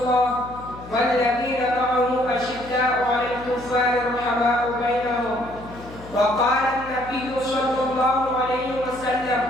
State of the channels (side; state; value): left; noise; hum, 17 dB below the sound